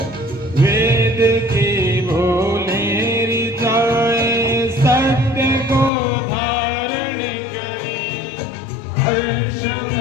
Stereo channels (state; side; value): drops out; right; at 5.9 s